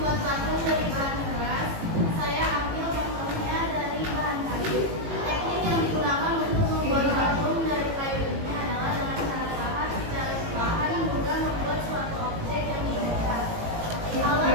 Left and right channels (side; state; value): left; late; 18 ms